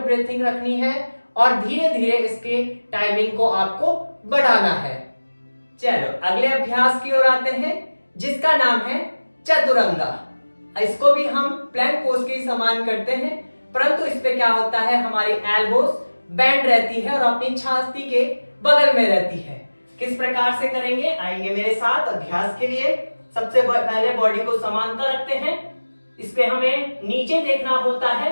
रखनी है और धीरे धीरे इसके टाइमिंग को आपको बढ़ाना है। चलो अगले अभ्यास की ओर आते हैं जिसका नाम है चतुरंगा। इसको भी हम प्लैंक पोज के समान करते हैं, परंतु इस पे क्या होता है, हमारी एल्बोस बैंड रहती है और अपनी छाती के बगल में रहती है। किस प्रकार से करेंगे, आइए मेरे साथ अभ्यास के लिए। सबसे पहले बॉडी को समांतर रखते हैं, इस पे हमें नीचे देखना होता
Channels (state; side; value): inverted; both; correlation -1.00